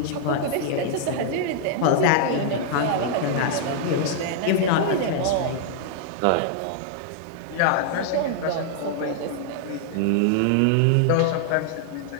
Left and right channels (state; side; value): different; both; correlation -0.01